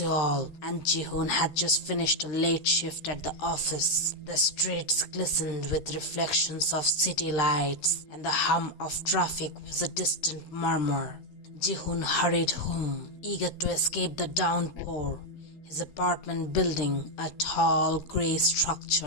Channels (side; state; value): right; late; 13 ms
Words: and Ji-Hoon had just finished a late shift at the office. The streets glistened with reflections of city lights, and the hum of traffic was a distant murmur. Ji-Hoon hurried home, eager to escape the downpour. His apartment building, a tall grey